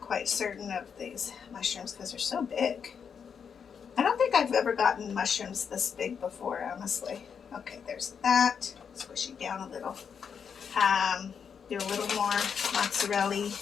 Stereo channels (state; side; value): quieter; right; 6.9 dB